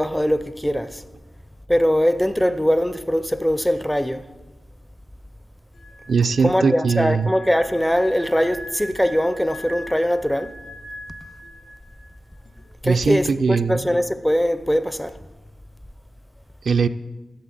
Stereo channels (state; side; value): normal; both; correlation 0.95